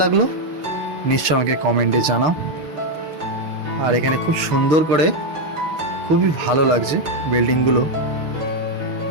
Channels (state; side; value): late; left; 6.3 ms